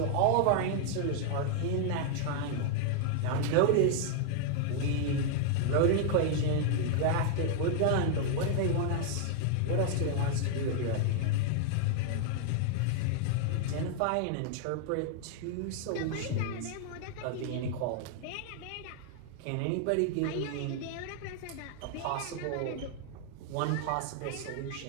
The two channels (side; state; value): both; different; correlation 0.00